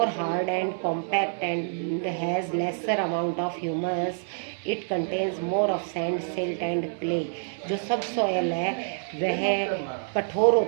hard and compact and has lesser amount of humus. It contains more of sand, silt and clay. जो सब सॉयल है वह कठोर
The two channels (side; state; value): left; silent; digital silence